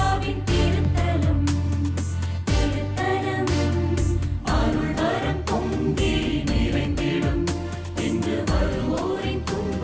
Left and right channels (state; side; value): identical; both; correlation 1.00